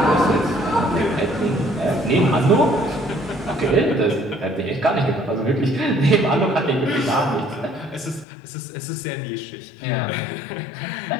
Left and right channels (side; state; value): right; drops out; at 8.2 s